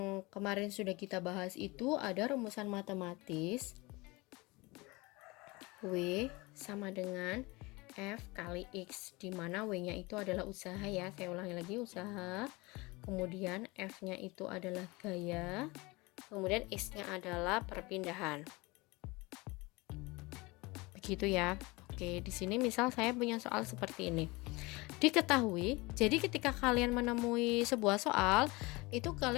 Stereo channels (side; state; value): right; quieter; 23.9 dB